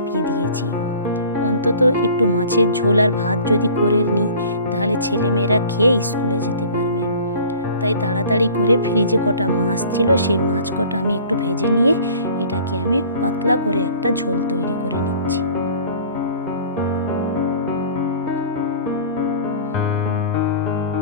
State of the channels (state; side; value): inverted; both; correlation -0.46